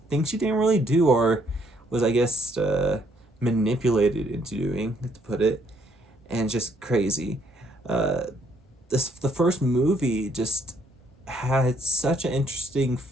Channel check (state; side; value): normal; both; correlation 0.69